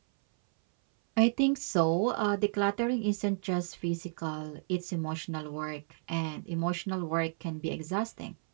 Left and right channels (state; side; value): silent; left; 57 dB below the other